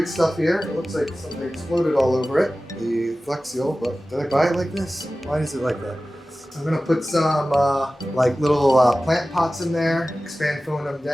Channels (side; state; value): both; normal; correlation 0.96